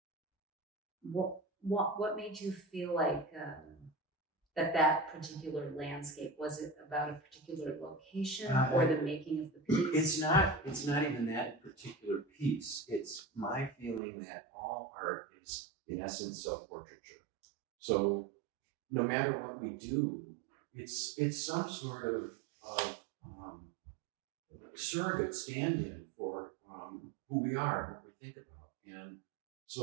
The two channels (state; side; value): drops out; left; at 14.0 s